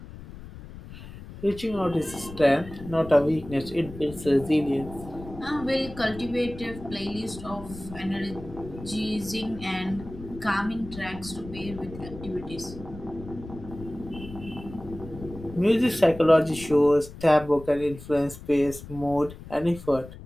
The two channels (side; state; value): left; noise; rumble, 14 dB below the sound